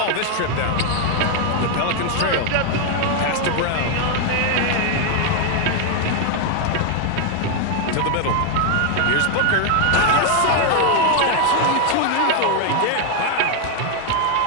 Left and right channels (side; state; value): both; different; correlation 0.01